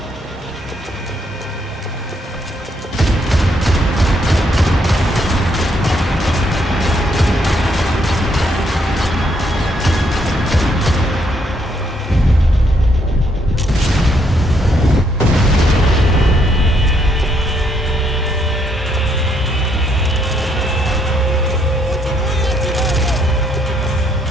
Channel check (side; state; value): both; normal; correlation 0.72